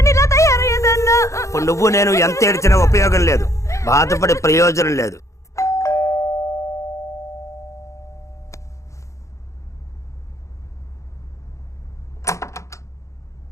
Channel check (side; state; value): right; late; 0.15 ms